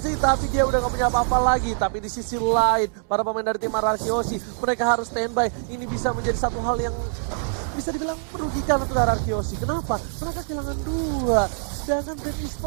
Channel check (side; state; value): left; silent; digital silence